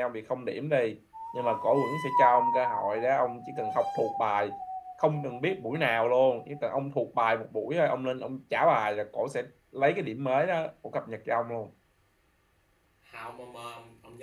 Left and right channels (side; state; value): both; identical; correlation 1.00